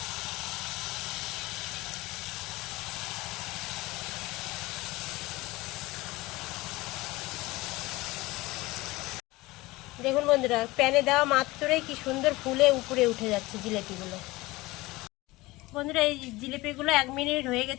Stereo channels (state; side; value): quieter; right; 20.6 dB